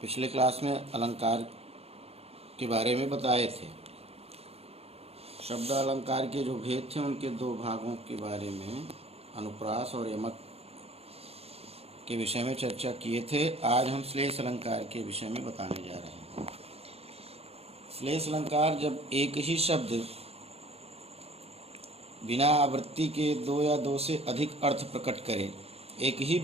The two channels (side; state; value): left; late; 0.29 ms